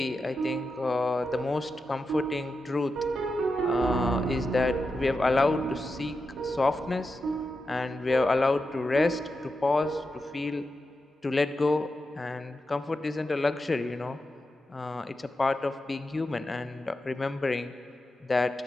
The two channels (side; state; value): both; normal; correlation 0.89